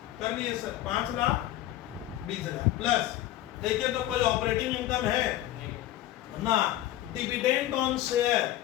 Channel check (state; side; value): quieter; right; 14.2 dB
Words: कर लिए सर, 5,20,000 प्लस। देखिए तो कोई ऑपरेटिंग इनकम है ना, डिविडेंड ऑन शेयर,